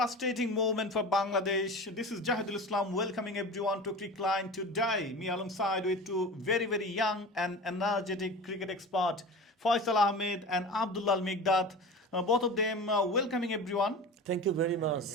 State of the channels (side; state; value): both; normal; correlation 0.33